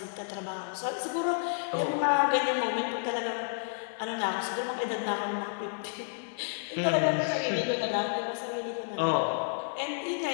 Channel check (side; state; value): right; silent; 57 dB below the other